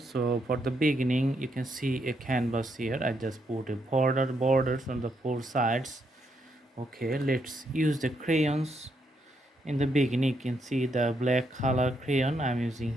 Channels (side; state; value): both; normal; correlation 0.78